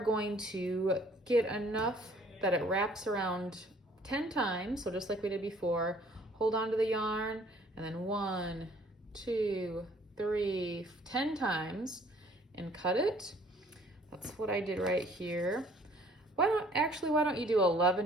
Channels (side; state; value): both; normal; correlation 0.58